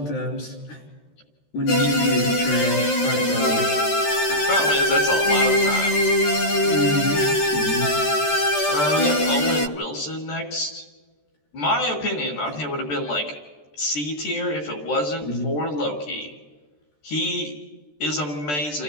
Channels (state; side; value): late; right; 13 ms